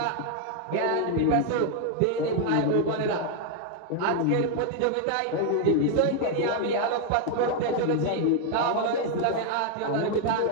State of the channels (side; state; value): both; different; correlation 0.01